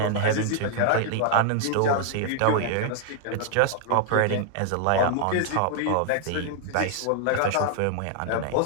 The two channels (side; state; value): both; different; correlation 0.00